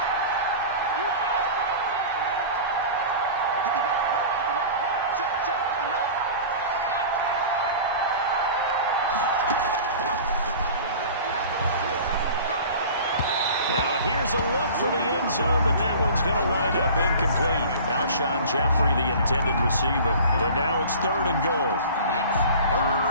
Now here's a look for the end zone, but that one's going to wind up incomplete. Alshon Jeffrey, the intended receiver. But now it's third and goal. It's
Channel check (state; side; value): inverted; both; correlation -0.39